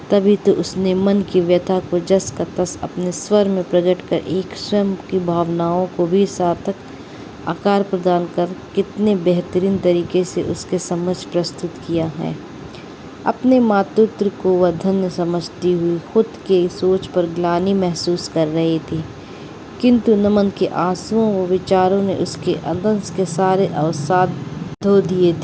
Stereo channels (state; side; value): identical; both; correlation 1.00